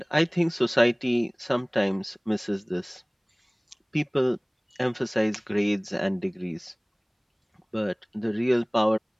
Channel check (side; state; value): both; identical; correlation 1.00